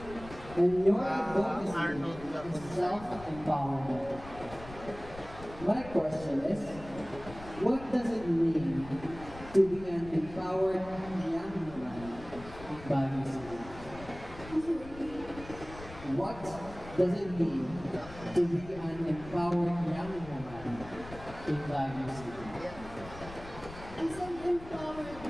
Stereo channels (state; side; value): noise; left; rumble, 15 dB below the sound